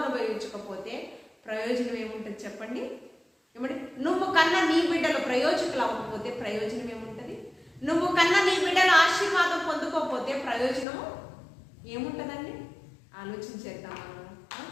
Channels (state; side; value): drops out; right; at 10.9 s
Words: ప్రయోజనం ఏముంటుంది చెప్పండి? ఏమంటే నువ్వు కన్నా నీ బిడ్డలు ప్రయోజకులు అవ్వకపోతే ప్రయోజనం ఏముంటుంది? నువ్వు కన్నా నీ బిడ్డలు ఆశీర్వాదం పొందుకోకపోతే ప్రయోజనము ఏముంటుందండి? ఆలోచించేద్దాం.